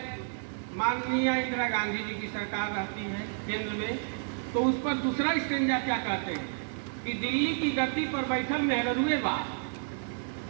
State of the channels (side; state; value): left; silent; 57 dB below the other